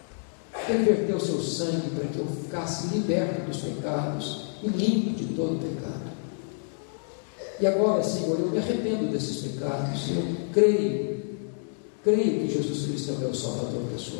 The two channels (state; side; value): silent; right; digital silence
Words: Ele verteu o seu sangue para que eu ficasse liberto dos pecados e limpo de todo pecado. E agora, Senhor, eu me arrependo desses pecados. Eu creio que Jesus Cristo é o meu Salvador